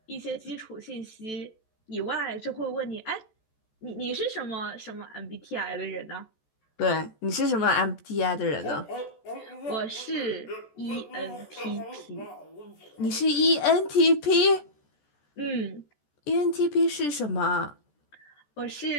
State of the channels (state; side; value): late; right; 14 ms